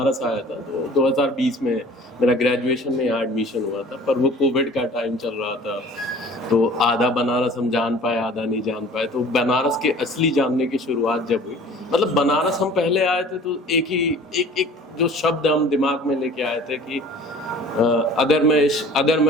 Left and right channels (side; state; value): both; normal; correlation 0.47